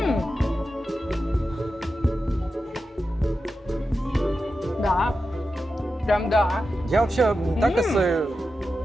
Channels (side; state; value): both; normal; correlation 0.91